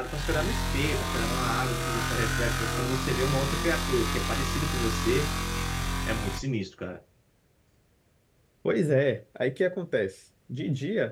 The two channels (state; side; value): identical; both; correlation 1.00